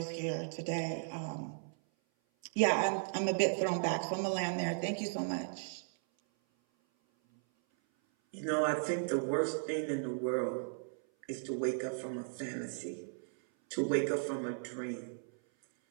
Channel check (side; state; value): left; silent; 54 dB below the other